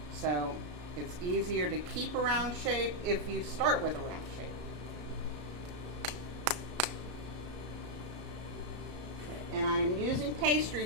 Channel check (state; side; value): late; left; 33 ms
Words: So it's easier to keep a round shape if you start with a round shape. And I'm using pastry